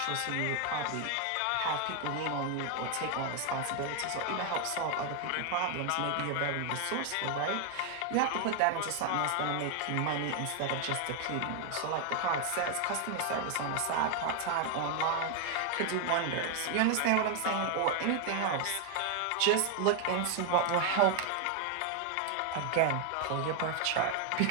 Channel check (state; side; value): different; both; correlation 0.01